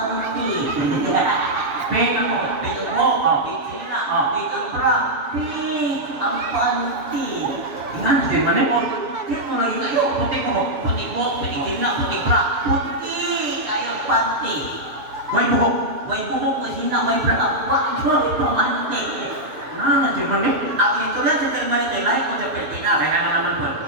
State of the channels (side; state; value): left; late; 6.9 ms